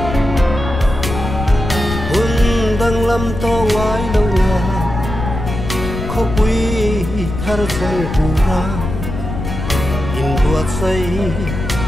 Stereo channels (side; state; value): left; noise; rumble, 6 dB below the sound